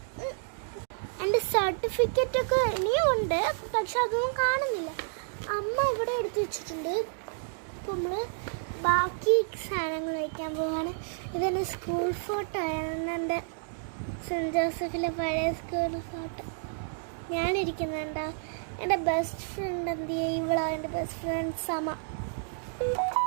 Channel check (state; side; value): silent; left; digital silence